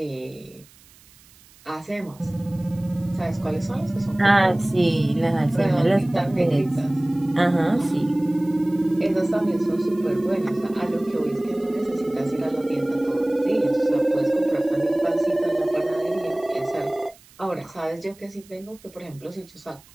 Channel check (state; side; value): noise; right; hiss, 26 dB below the sound